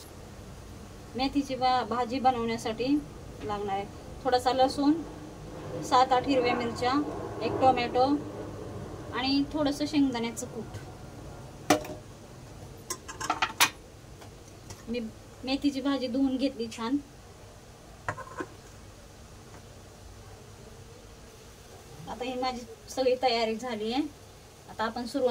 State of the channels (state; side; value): identical; both; correlation 1.00